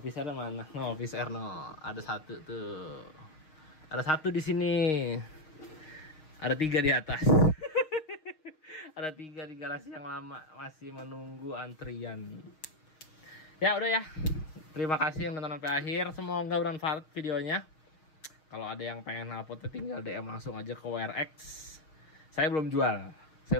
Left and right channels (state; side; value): late; right; 6.4 ms